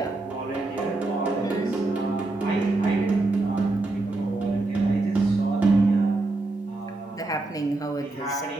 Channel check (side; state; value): left; quieter; 3.1 dB